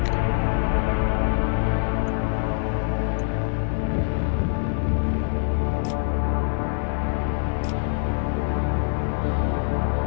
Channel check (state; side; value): silent; right; 62 dB below the other